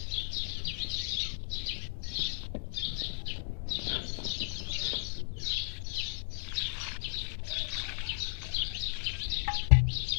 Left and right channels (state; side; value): silent; right; digital silence